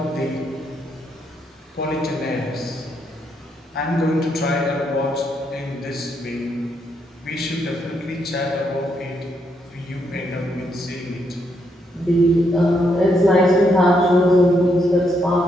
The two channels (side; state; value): both; normal; correlation 0.77